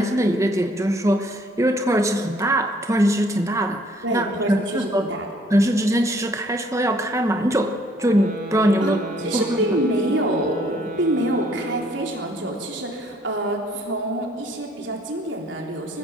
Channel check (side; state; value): both; normal; correlation 0.63